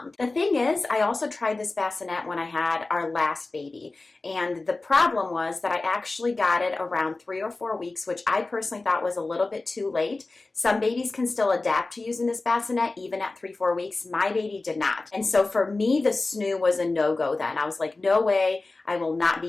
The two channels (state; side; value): quieter; right; 3.4 dB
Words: The thing is, I also tried this bassinet when I had our last baby. And the problem was that I actually got it around 3 or 4 weeks, which I personally thought was a little bit too late. Some babies can still adapt to using this bassinet even at 3-4 weeks. My baby did not. And so for me, the Snoo was a no-go then. I was like, no way, I will not be